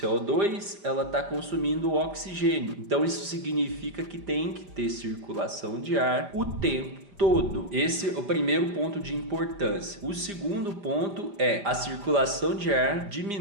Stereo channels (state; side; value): late; left; 4.9 ms